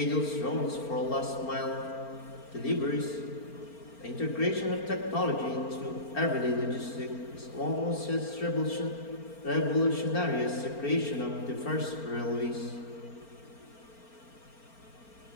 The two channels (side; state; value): right; late; 4.4 ms